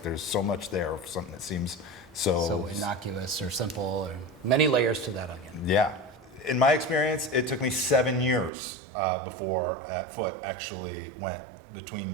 there's so much there, something that seems So innocuous or simple, or many layers to that onion. Yeah. In my experience, it took me 7 years before that foot actually went between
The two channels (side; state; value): left; drops out; at 8.5 s